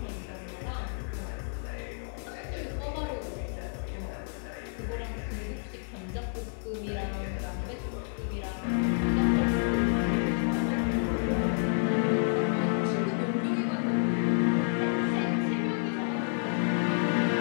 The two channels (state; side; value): silent; right; 58 dB below the other